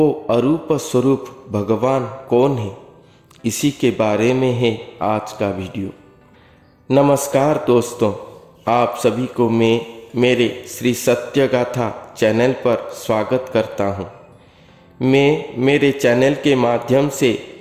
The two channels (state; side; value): identical; both; correlation 1.00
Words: अरूप स्वरूप भगवान कौन है, इसी के बारे में है आज का वीडियो। नमस्कार दोस्तों, आप सभी को मैं मेरे श्री सत्य गाथा चैनल पर स्वागत करता हूँ। मैं मेरे चैनल के माध्यम से